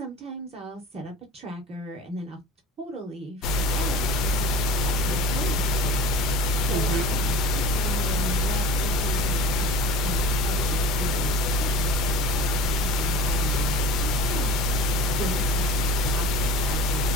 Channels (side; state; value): both; normal; correlation 0.35